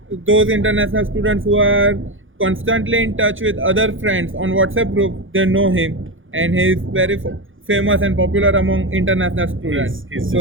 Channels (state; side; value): late; left; 0.58 ms